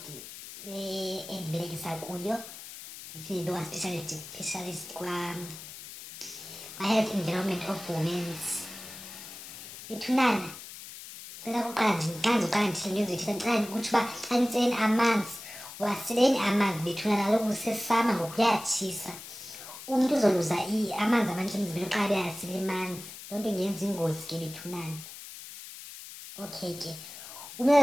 endibelekisa kuyo, ndiphinde specialist kwa-Health Environment of Women's. Bethunana, ndicela kuqala uqala ndithile into ezithile, ndicela ukuthi uba xa nitseni amanzi waseleni amanzi bethunana, kaloku kusesama ngoku kuyatshisa. Umntu uzoluza amanzi amanintsi emzimbeni xa beyasile amanzi, loo nto ingenza ingozi ke bethunana. Okay ke,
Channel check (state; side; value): noise; left; hiss, 13 dB below the sound